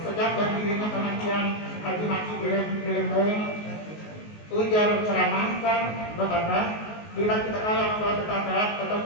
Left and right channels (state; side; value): late; right; 19 ms